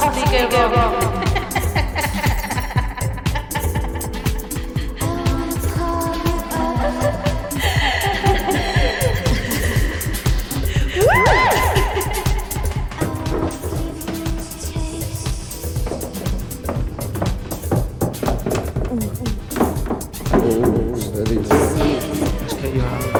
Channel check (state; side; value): identical; both; correlation 1.00